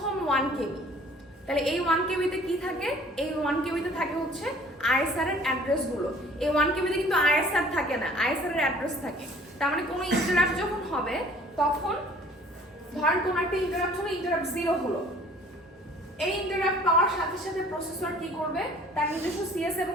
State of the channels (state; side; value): normal; both; correlation 0.52